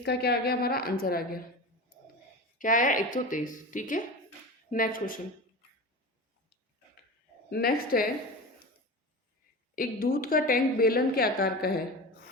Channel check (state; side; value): normal; both; correlation 0.29